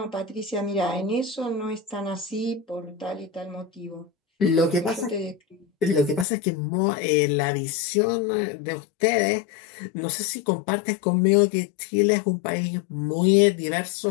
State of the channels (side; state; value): right; drops out; at 6.2 s